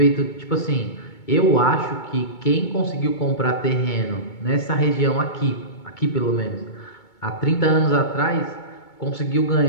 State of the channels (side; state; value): right; late; 2.2 ms